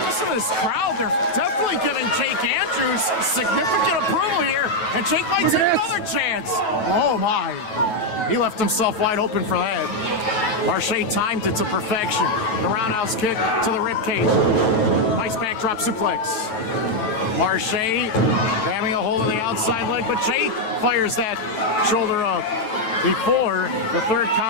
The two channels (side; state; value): right; late; 9.2 ms